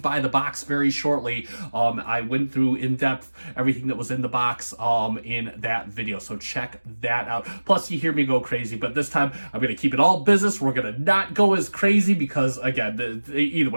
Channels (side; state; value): both; inverted; correlation -1.00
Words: the box very shortly. I went through in depth everything that was in the box in that video, so check that out. Plus, you hear me go crazy, but this time I'm going to keep it all business. We're going to not go as crazy because, again, either